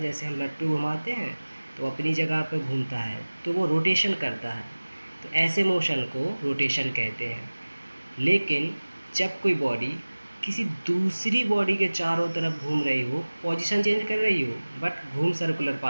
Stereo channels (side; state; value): both; inverted; correlation -1.00